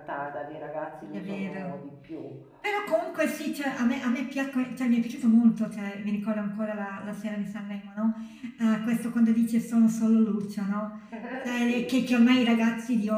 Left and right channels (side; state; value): both; identical; correlation 1.00